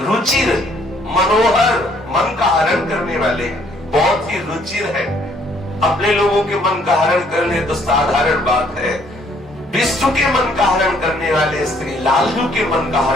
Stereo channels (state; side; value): normal; both; correlation 0.64